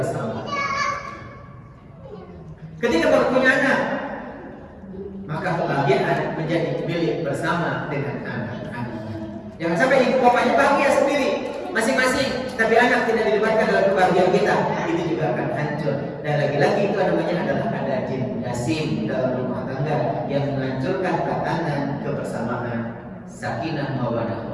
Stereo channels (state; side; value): identical; both; correlation 1.00